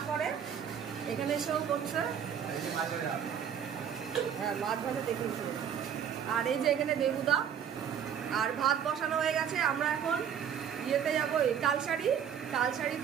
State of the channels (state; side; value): quieter; left; 8.5 dB